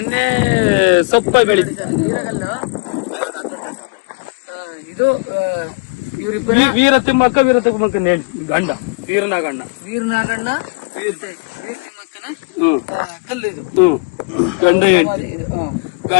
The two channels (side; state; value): right; quieter; 31.4 dB